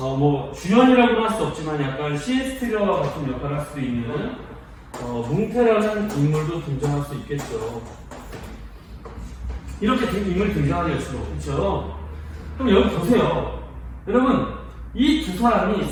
주연이라고는 할 수 없지만 약간 시에스트리와 같은 역할을 할 수 있는 뭉테라는 인물도 등장할 수 있겠죠. 이렇게 인물이 등장하게 될 수가 없죠. 그럼 여기 보세요. 여러분, 이 두 사람이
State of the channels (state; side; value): identical; both; correlation 1.00